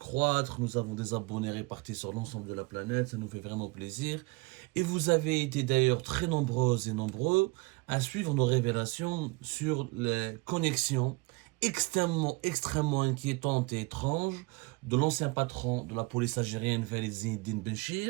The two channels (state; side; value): quieter; left; 25.8 dB